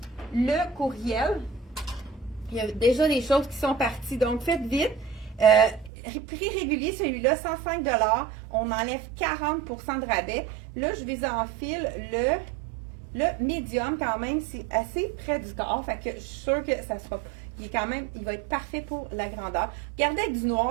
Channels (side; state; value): left; drops out; at 5.9 s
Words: le courriel. Il y a déjà des choses qui sont parties. Donc, faites vite. Prix régulier, celui-là, 105 $. On enlève 40% de rabais. Là, je vous enfile le médium, quand même, c'est assez près du corps. Fait que je suis sûre que ça sera. Il va être parfait pour la grandeur. Regardez avec du